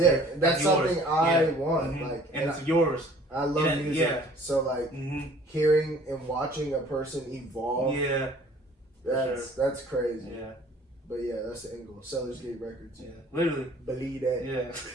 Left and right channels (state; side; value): normal; both; correlation 0.53